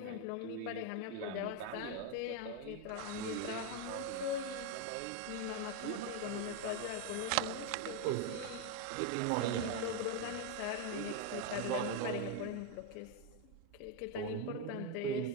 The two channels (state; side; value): different; both; correlation 0.02